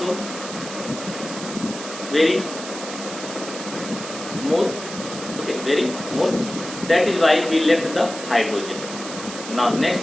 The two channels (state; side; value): noise; right; hiss, 10 dB below the sound